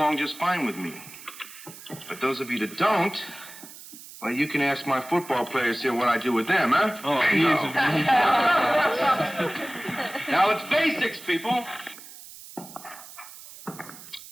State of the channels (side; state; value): right; noise; hiss, 17 dB below the sound